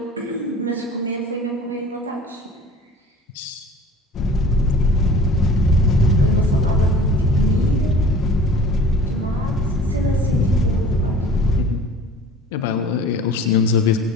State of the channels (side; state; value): both; normal; correlation 0.44